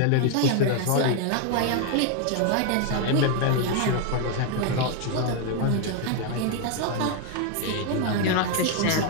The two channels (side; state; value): both; different; correlation 0.01